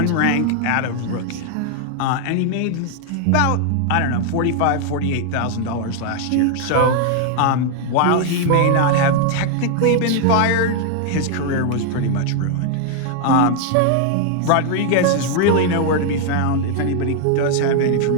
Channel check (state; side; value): different; both; correlation 0.00